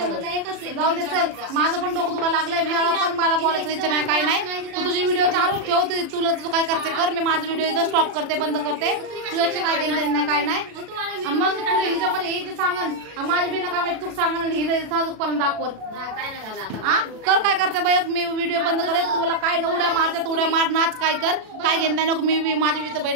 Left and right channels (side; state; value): left; late; 37 ms